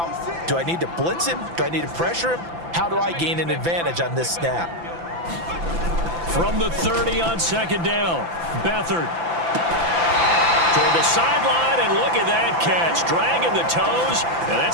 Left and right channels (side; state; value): left; late; 5.9 ms